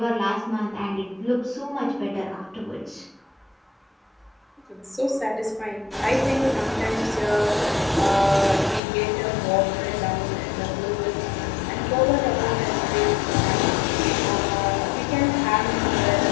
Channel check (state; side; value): drops out; right; at 8.8 s